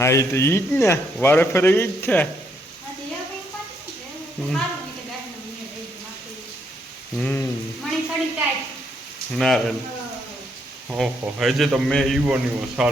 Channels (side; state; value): both; normal; correlation 0.74